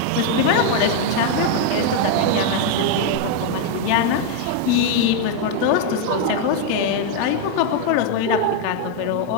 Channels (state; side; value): different; both; correlation 0.00